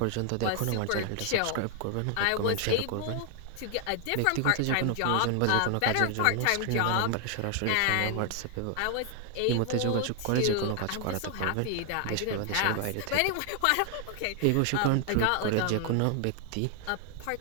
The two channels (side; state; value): both; different; correlation 0.00